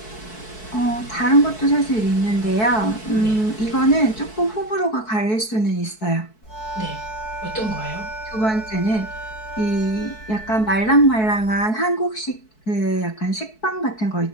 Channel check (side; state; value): right; late; 4.6 ms